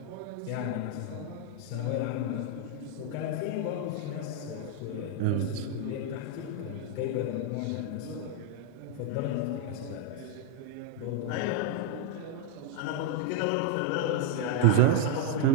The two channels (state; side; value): different; both; correlation 0.00